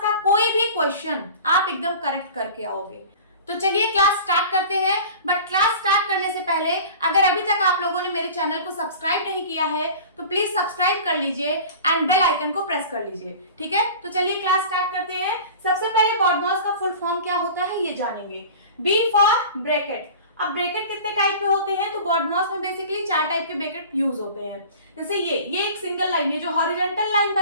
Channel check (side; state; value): both; inverted; correlation -0.39